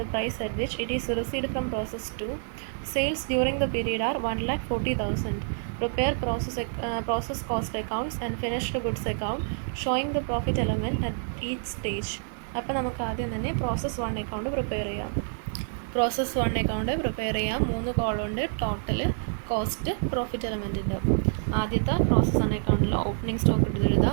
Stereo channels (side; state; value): left; silent; digital silence